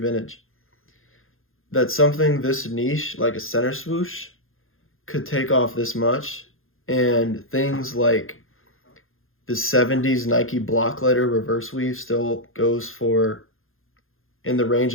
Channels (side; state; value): right; late; 0.60 ms